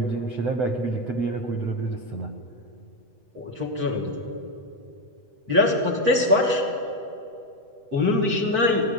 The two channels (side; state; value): left; late; 8.0 ms